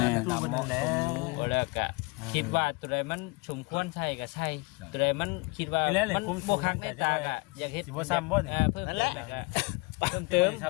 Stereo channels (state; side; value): quieter; right; 27.3 dB